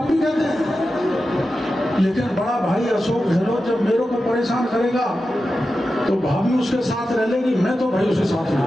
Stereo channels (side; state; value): both; normal; correlation 0.92